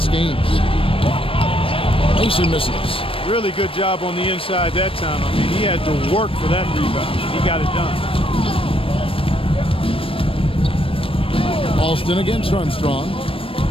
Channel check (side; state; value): right; late; 0.26 ms